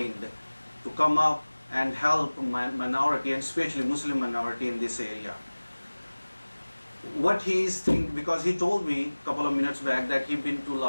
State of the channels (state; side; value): inverted; both; correlation -1.00